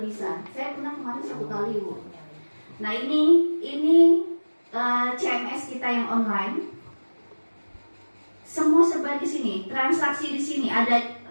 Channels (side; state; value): both; inverted; correlation -1.00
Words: bisa. Saya pernah kemarin 1 kali Bu. Nah ini CMS kita yang online. Semua serba di sini, transaksi di sini ada,